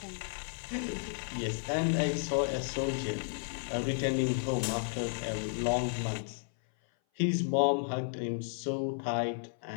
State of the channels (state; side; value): silent; right; 56 dB below the other